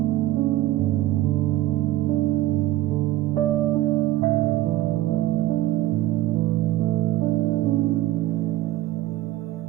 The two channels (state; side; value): quieter; left; 15.0 dB